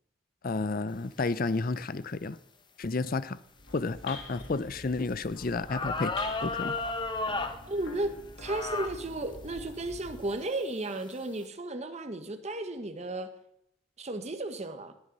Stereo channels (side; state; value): both; normal; correlation 0.38